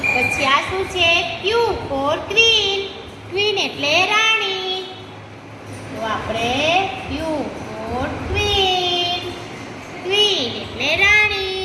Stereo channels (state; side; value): identical; both; correlation 1.00